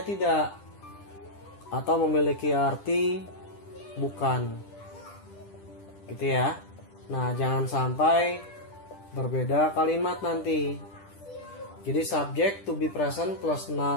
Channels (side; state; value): right; late; 10 ms